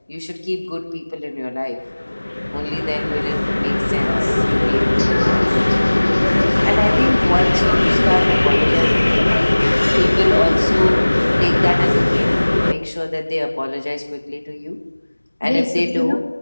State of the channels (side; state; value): both; inverted; correlation -1.00